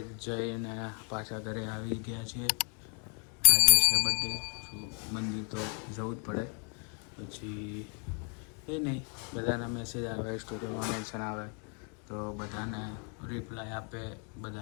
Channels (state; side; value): quieter; right; 39.0 dB